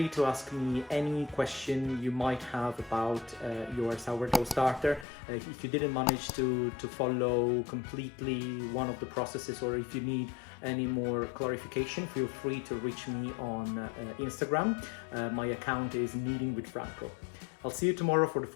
to ask me any question you might have about your sourdough starter. If you didn't manage to follow completely one of the processes, or if you need any more clarification, feel free to reach me on Instagram. My account is Kneading with Franco. I'll see you tomorrow for the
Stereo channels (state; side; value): drops out; right; at 5.1 s